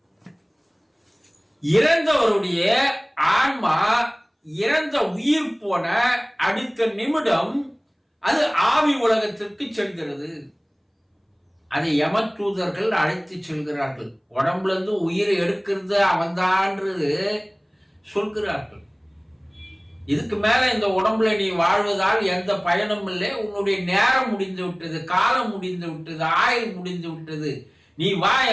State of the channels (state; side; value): identical; both; correlation 1.00